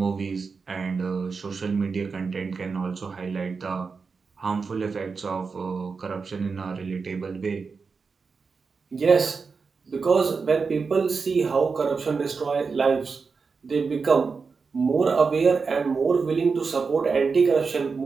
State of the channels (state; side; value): quieter; left; 4.9 dB